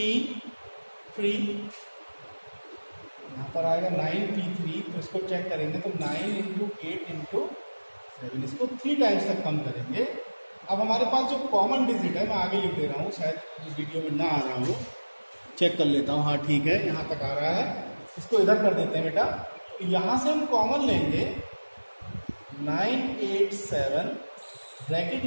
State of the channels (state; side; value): inverted; both; correlation -1.00